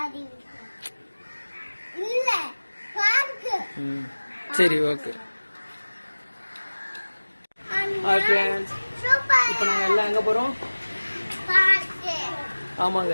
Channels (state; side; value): inverted; both; correlation -1.00